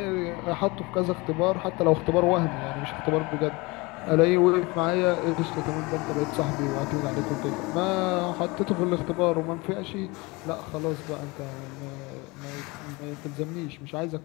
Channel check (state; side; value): quieter; right; 25.0 dB